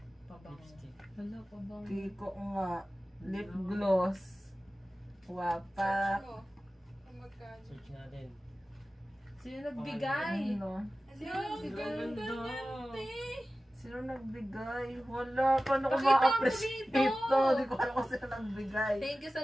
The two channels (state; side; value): normal; both; correlation 0.95